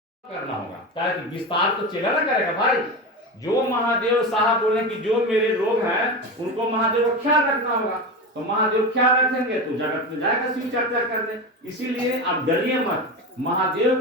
करना होगा, ताकि विस्तार तो चेला ना करेगा भाई। जो महादेव साहब बोले कि जो मेरे लोग हैं उनको महादेव का ख्याल रखना होगा, तो महादेव ख्याल रखेंगे तो जगत में जाएगा शिव चर्चा करने। इसीलिए आप डरिए मत, महादेव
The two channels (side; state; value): both; normal; correlation 0.22